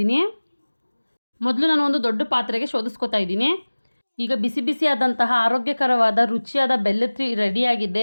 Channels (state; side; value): inverted; both; correlation -1.00